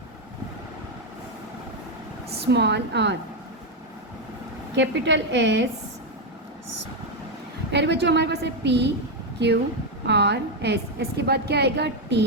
small r, capital S. अरे बच्चों हमारे पास है P Q R S. S के बाद क्या आएगा? T,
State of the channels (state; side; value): normal; both; correlation 0.05